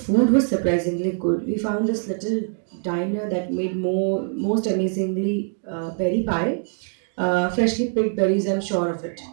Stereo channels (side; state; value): left; silent; 57 dB below the other